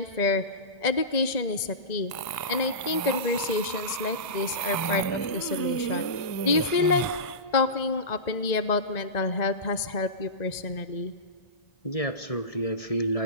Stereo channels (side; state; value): right; late; 1.9 ms